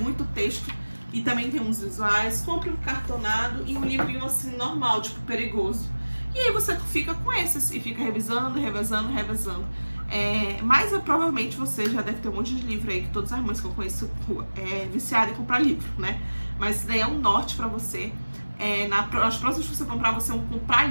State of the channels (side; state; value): both; inverted; correlation -1.00